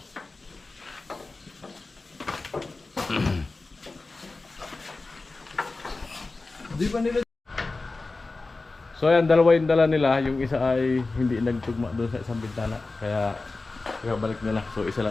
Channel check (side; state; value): right; quieter; 3.5 dB